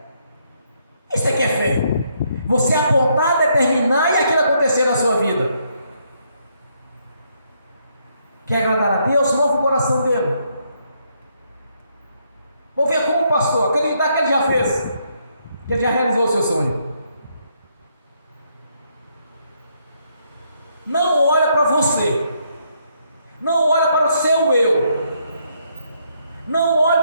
Isso aqui é fé. Você apontar, determinar e aquilo acontecer na sua vida. Quer agradar a Deus? Mova o coração dele. Vou ver como o pastor, acreditar que ele já fez, que ele já realizou o seu sonho. Não olha para você. Não olhe para o seu eu. Não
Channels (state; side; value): inverted; both; correlation -0.73